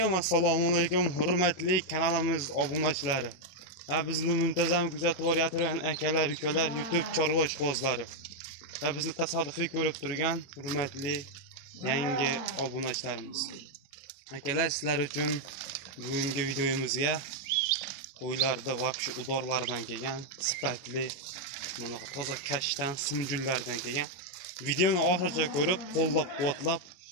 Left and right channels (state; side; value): late; right; 21 ms